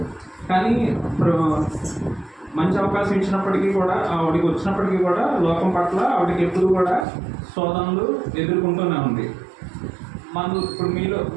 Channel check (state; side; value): drops out; left; at 7.1 s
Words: కానీ మంచి అవకాశం ఇచ్చినప్పటికీ కూడా ఆవిడకి వచ్చినప్పటికీ కూడా లోకం పట్ల ఆవిడకి ఎప్పుడు కూడా శోధనలు ఎదుర్కొంటూనే ఉంది. ఇప్పుడు